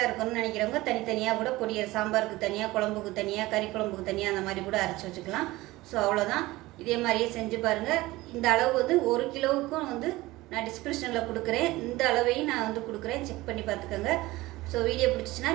இருக்கணும்னு நினைக்கிறவங்க தனித்தனியாக கூட பொடியை சாம்பாருக்கு தனியாக, குழம்புக்கு தனியாக, கறி குழம்புக்கு தனியாக அந்த மாதிரி கூட அரைச்சி வச்சுக்கலாம். ஸோ அவ்வளோதான். இதே மாதிரியே செஞ்சு பாருங்கள். இந்த அளவு வந்து 1 கிலோவுக்கும் வந்து நான் டிஸ்கிரிப்ஷனில் கொடுக்குறேன். இந்த அளவையும் நான் வந்து கொடுக்குறேன், செக் பண்ணி பார்த்துக்கோங்க. ஸோ வீடியோ பிடிச்சிச்சின்னா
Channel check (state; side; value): quieter; left; 19.1 dB